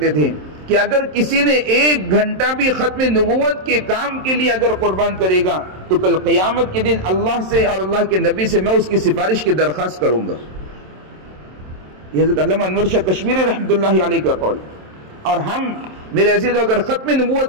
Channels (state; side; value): late; left; 27 ms